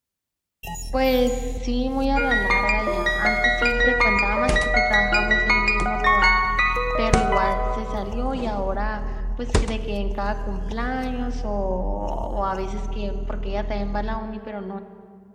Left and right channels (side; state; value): both; identical; correlation 1.00